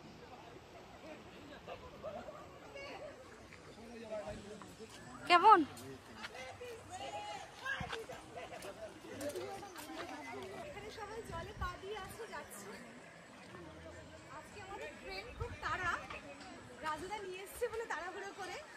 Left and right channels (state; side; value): identical; both; correlation 1.00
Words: কেমন? সবাই জলে পা দিয়ে আসছে যাচ্ছে। আজকে আমাদের ট্রেন খুব তাড়া, রাজুদা নিয়ে এসছে বলে তাড়াহুড়ো করে